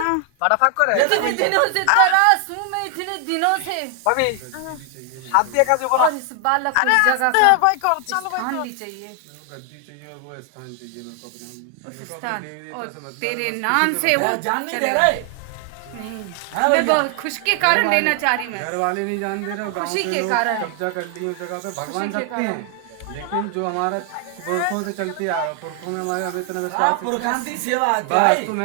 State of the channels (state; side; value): different; both; correlation 0.00